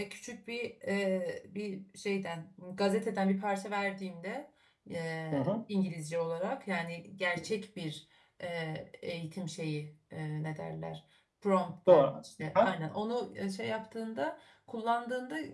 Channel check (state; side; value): identical; both; correlation 1.00